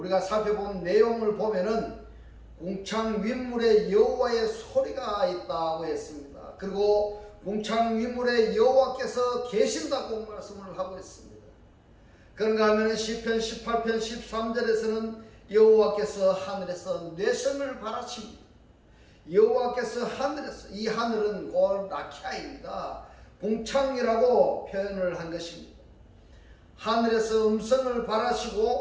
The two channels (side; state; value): both; identical; correlation 1.00